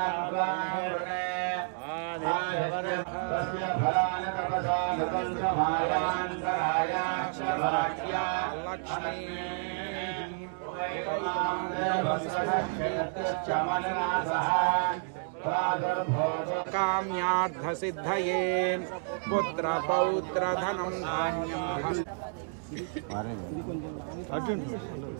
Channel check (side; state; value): left; silent; digital silence